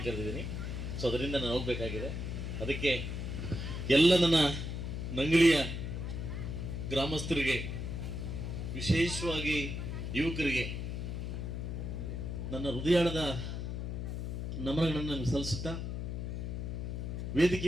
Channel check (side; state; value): left; noise; hum, 4 dB below the sound